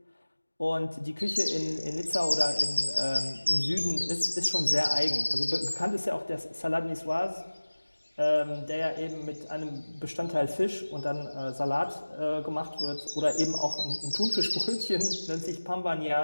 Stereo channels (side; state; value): both; inverted; correlation -1.00